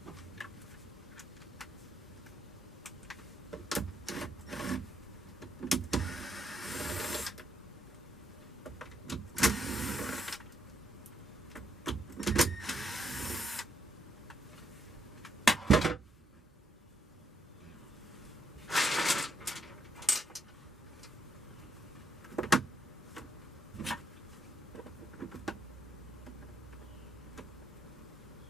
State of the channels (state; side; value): normal; both; correlation 0.75